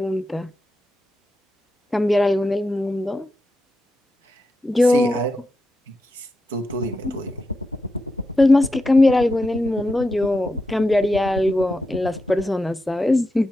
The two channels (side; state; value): both; normal; correlation 0.88